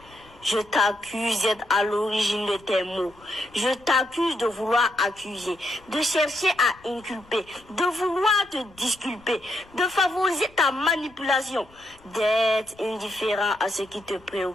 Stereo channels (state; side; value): noise; left; rumble, 27 dB below the sound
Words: Je t'accuse d'être à l'origine de tes mots. Je t'accuse de vouloir accuser, de chercher à inculper, de vouloir te disculper, de favoriser ta manipulation, d'être indifférent à ce qui te